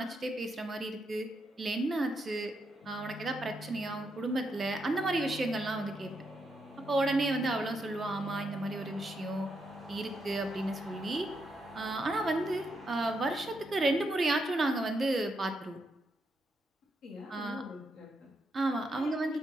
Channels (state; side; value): normal; both; correlation 0.81